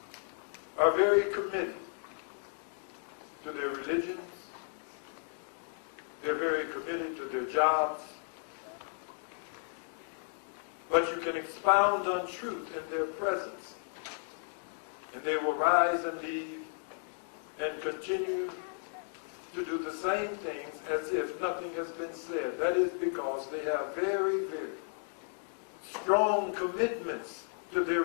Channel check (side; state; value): right; silent; 55 dB below the other